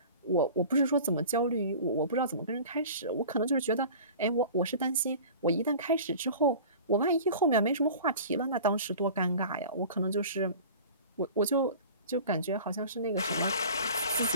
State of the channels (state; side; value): inverted; both; correlation -0.40